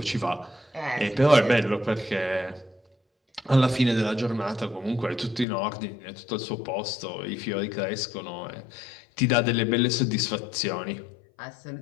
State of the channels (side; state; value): right; drops out; at 5.5 s